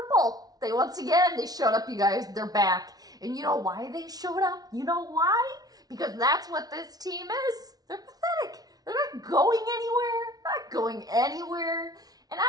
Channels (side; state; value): left; late; 0.19 ms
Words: They showed up, you guys. They're back. And you know why they showed up? You know why? Because that's what this team is. They're pathetic. They're not going anywhere. And I'm